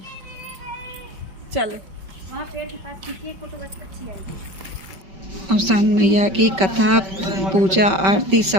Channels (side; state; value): left; late; 5.2 ms